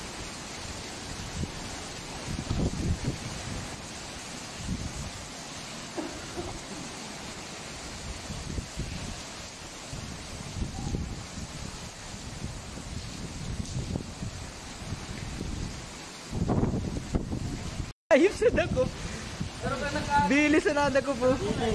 Ayos sa dako. Bilis na nada ko po.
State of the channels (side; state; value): both; identical; correlation 1.00